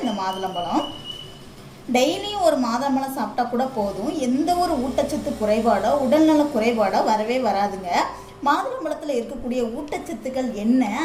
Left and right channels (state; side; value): identical; both; correlation 1.00